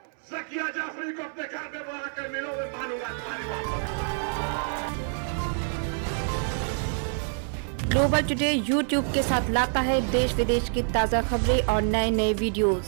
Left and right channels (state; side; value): silent; left; 60 dB below the other